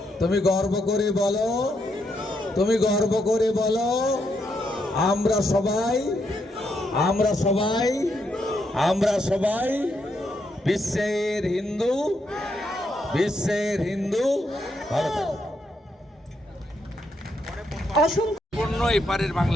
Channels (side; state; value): both; normal; correlation 0.79